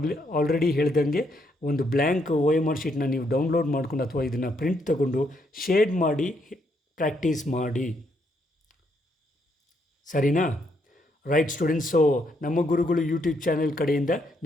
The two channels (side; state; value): both; normal; correlation 0.75